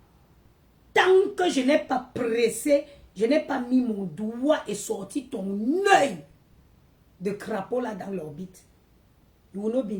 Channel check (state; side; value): identical; both; correlation 1.00